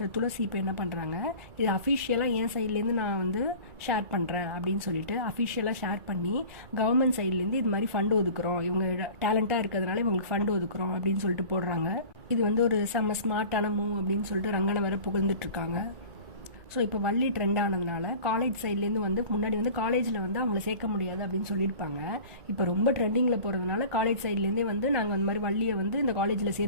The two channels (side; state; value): left; late; 1.9 ms